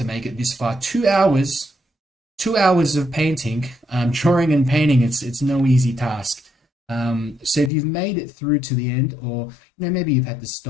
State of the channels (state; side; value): drops out; right; at 7.7 s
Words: make it this far. 2 hours, 2 hours of painting, drawing and painting. It's no easy task. So if you've made it through to the end, or you know, maybe you've had to